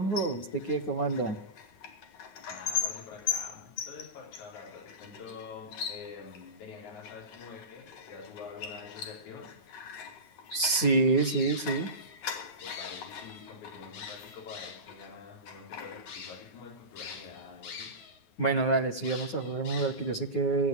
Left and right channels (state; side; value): late; right; 9.5 ms